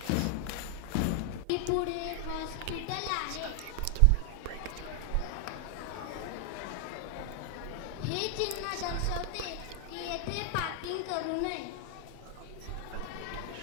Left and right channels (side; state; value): both; different; correlation 0.00